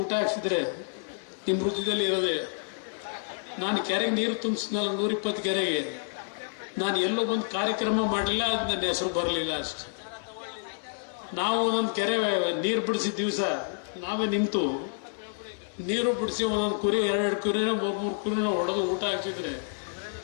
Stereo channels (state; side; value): silent; right; digital silence